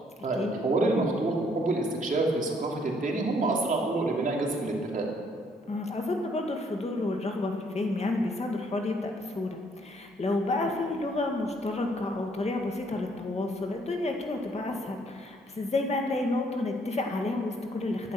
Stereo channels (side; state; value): both; normal; correlation 0.66